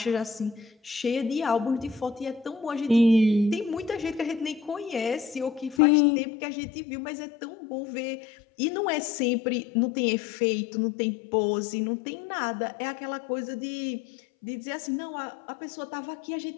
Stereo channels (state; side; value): drops out; right; at 5.8 s